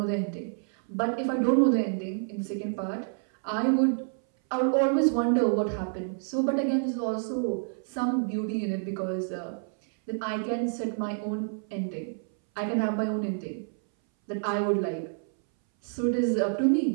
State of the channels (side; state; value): left; silent; 59 dB below the other